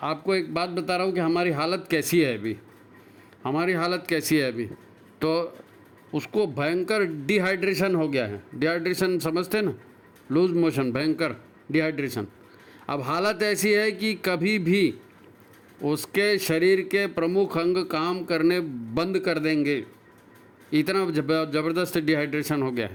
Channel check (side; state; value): both; identical; correlation 1.00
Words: आपको एक बात बता रहा हूँ कि हमारी हालत कैसी है अभी, हमारी हालत कैसी है अभी। तो उसको भयंकर डिहाइड्रेशन हो गया है। डिहाइड्रेशन समझते हैं ना, लूज मोशन, भयंकर डिहाइड्रेशन। अब हालत ऐसी है कि कभी भी उसके शरीर के प्रमुख अंग काम करने बंद कर देंगे, इतना ज़बरदस्त डिहाइड्रेशन हो गया